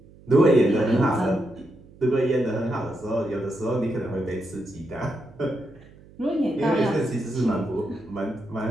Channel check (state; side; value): noise; right; hum, 23 dB below the sound